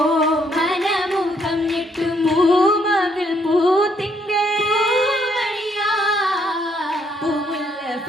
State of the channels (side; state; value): both; normal; correlation 0.71